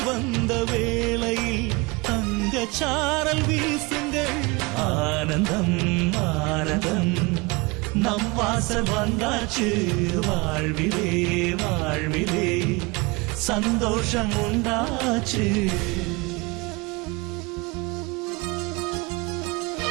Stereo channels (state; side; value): quieter; left; 25.8 dB